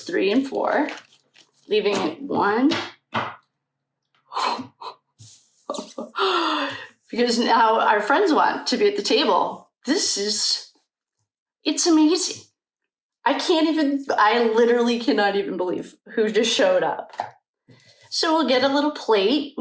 and 4, leaving it 1. Because now our friends want to be at the table. It's amazing. I literally cannot even believe who just showed up. So we'll get a little plate.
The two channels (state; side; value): identical; both; correlation 1.00